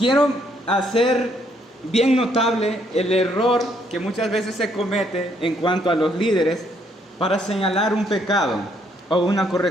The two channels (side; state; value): both; normal; correlation 0.70